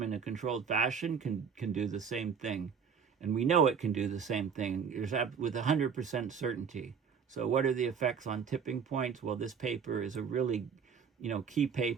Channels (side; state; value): left; quieter; 6.6 dB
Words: in a controlled fashion can do the same thing, and we know it can do the same thing with 100% certainty. So what are the effects on tipping points? Well, this paper is a really key